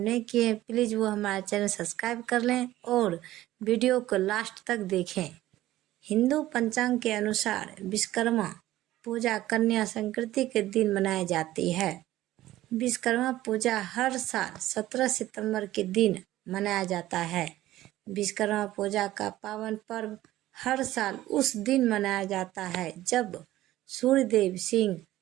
किए, प्लीज़ वो हमारे चैनल सब्सक्राइब कर लें और वीडियो को लास्ट तक देखें। हिंदू पंचांग के अनुसार विश्वकर्मा पूजा कन्या संक्रांति के दिन मनाई जाती है। विश्वकर्मा पूजा हर साल 17 सितंबर के दिन मनाया जाता है। विश्वकर्मा पूजा का पावन पर्व हर साल उस दिन मनाया जाता है जब सूर्यदेव सिंह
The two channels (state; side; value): quieter; left; 15.2 dB